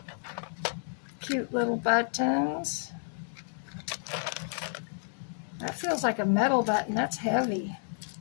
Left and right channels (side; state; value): right; silent; 57 dB below the other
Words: Cute little buttons. That feels like a metal button. That's heavy.